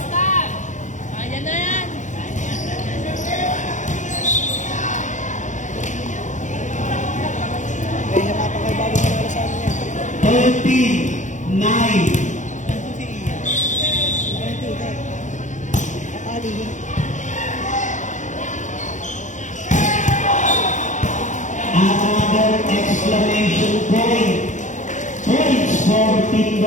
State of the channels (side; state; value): right; late; 0.36 ms